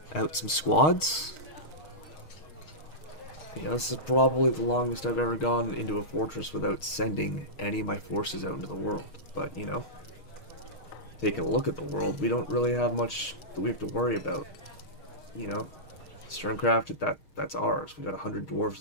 out some squads. Yeah, this is probably the longest I've ever gone into a fortress without sending any of my forces out into the world. But, you know, taking a look at the world, we don't really have much that we have to worry about. You know, Sterncraft, that's ours. We got 100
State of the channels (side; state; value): right; late; 6.4 ms